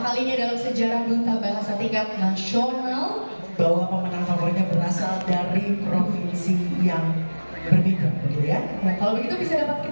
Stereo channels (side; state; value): both; inverted; correlation -1.00